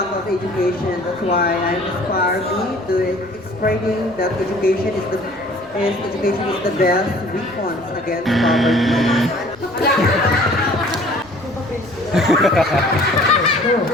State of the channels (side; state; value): left; noise; rumble, 28 dB below the sound